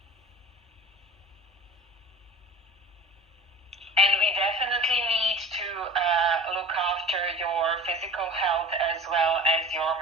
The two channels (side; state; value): both; normal; correlation 0.40